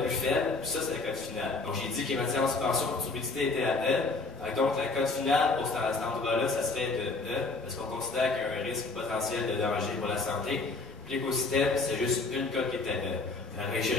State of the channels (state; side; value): quieter; right; 3.7 dB